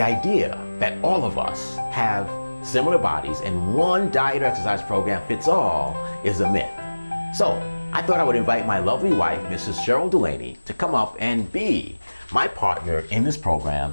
that all of us have similar bodies and one diet or exercise program fits all is a myth. So I thought I would invite my lovely wife, Mrs. Cheryl Delaney, to come up and be my partner in this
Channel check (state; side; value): inverted; both; correlation -1.00